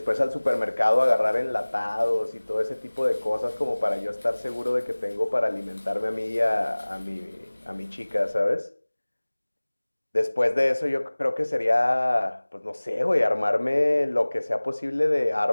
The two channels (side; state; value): both; inverted; correlation -1.00